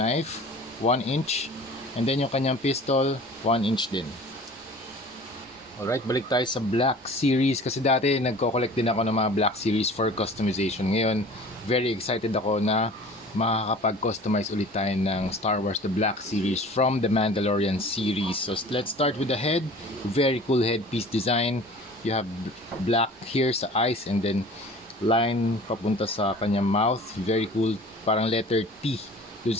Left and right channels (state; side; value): normal; both; correlation 0.44